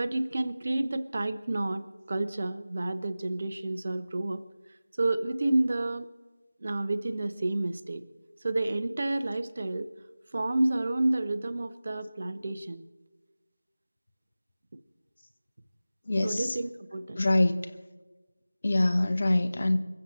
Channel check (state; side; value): inverted; both; correlation -0.97